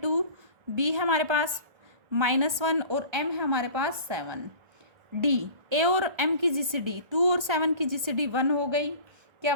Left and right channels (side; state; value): left; late; 1.6 ms